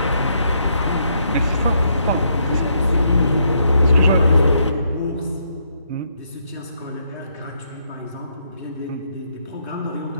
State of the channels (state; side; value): inverted; both; correlation -0.75